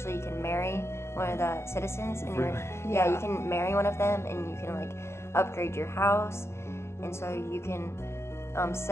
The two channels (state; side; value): late; right; 0.13 ms